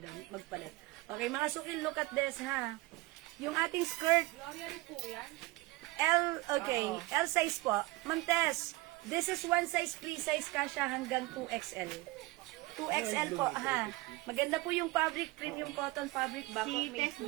doon magpalit. Okay, mga suki, look at this, ha? Yung ating skirt. L, okay, L size po. Ma'am Tess, this is one size, free size, kasha hanggang 2XL. 2XL po, ha? Maganda po yung fabric, premium cotton fabric, Si Bangkok made Tess po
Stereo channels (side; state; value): left; quieter; 21.1 dB